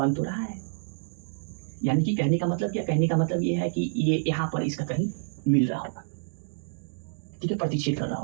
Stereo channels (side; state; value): left; silent; digital silence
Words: तो रहा है। यानी कि कहने का मतलब क्या? कहने का मतलब ये है कि ये यहाँ पर इसका कहीं मिल रहा होगा, ठीक है, प्रतिच्छेद कर रहा